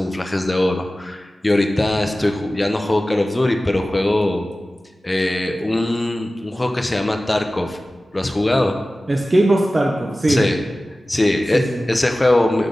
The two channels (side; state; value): both; normal; correlation 0.96